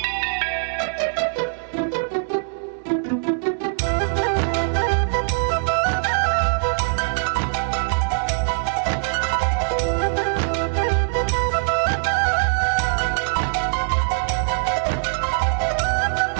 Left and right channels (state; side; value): silent; left; digital silence